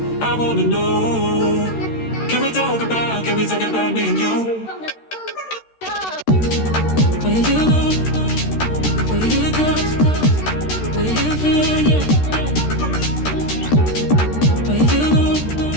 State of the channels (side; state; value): right; late; 13 ms